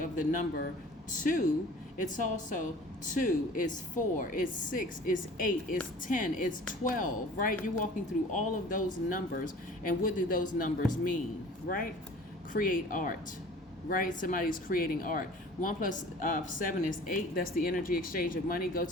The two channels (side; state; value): both; normal; correlation 0.45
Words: the number 2. It's also 2, it's 4, it's 6, it's 8, it's 10, it's 12, right? You're walking through all of those numbers. And what do those numbers mean, right? Create art, right? Somebody's creating art. 1 plus 7 is 8. That's the energy exchange of money. Go